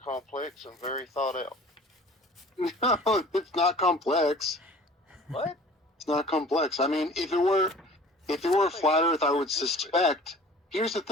complex and very thought out. No, it's not complex. What? It's not complex. I mean, if it were flat Earth, I would suspect. Here's the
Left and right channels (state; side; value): normal; both; correlation 0.46